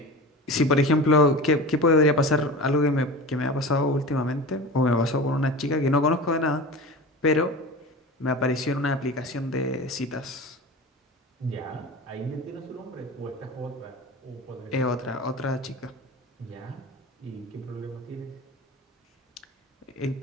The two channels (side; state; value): both; normal; correlation 0.32